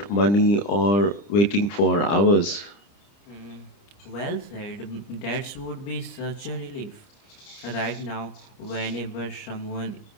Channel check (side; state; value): right; late; 30 ms